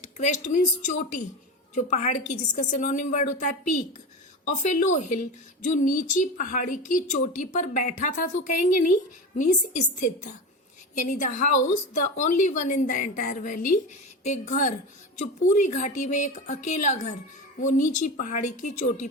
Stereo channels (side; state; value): both; normal; correlation 0.25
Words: मीन्स चोटी, जो पहाड़ की, जिसका सिनोनिम वर्ड होता है पीक। ऑफ ए लो हिल, जो नीची पहाड़ी की चोटी पर बैठा था तो कहेंगे नहीं, मीन्स स्थित था। यानी the house the only one in the entire valley, एक घर जो पूरी घाटी में एक अकेला घर, वो नीची पहाड़ी की चोटी